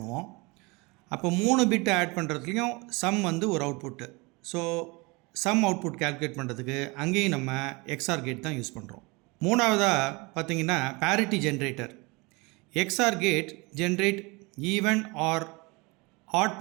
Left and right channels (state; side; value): quieter; left; 26.4 dB